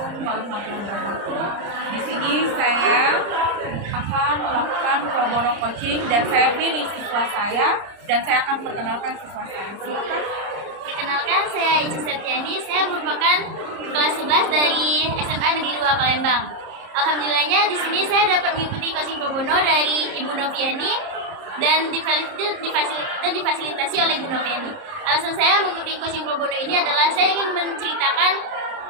warahmatullahi wabarakatuh. Di sini saya akan melakukan pro bono coaching dan saya pilih siswa saya dan saya akan perkenalkan siswa saya. Silakan. Perkenalkan, saya Ica Septiani. Saya merupakan kelas 11 dari SMA Negeri 2 Palembang. Alhamdulillahnya di sini saya dapat mengikuti coaching pro bono dari Ibu Noviani dan difasilitasi oleh Ibu Noviani. Alasan saya mengikuti coaching pro bono ini adalah saya ingin menceritakan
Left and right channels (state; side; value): late; left; 30 ms